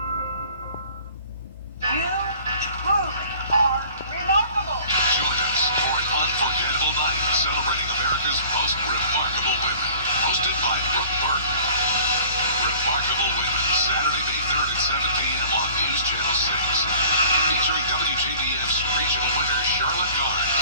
You truly are remarkable. Join us for an unforgettable night celebrating America's most remarkable women. Hosted by Brooke Burke. Remarkable Women, Saturday, May 3rd at 7 p.m. on News Channel 6. Featuring WJBF's regional winner, Charlotte Garnes.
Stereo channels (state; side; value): inverted; both; correlation -0.47